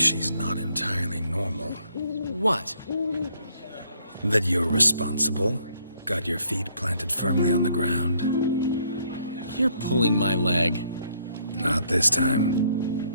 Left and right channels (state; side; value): inverted; both; correlation -0.67